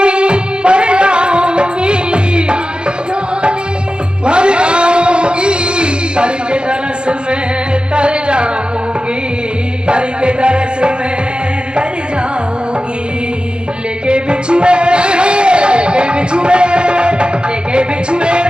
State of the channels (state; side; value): late; left; 0.051 ms